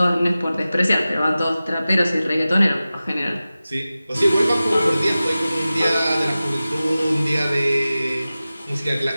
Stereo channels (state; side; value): inverted; both; correlation -0.96